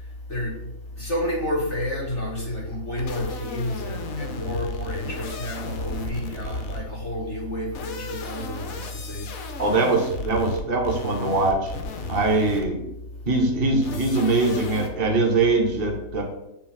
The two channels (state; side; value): late; right; 3.4 ms